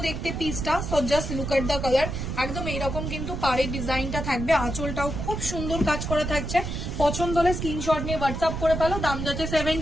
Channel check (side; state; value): right; noise; rumble, 4 dB below the sound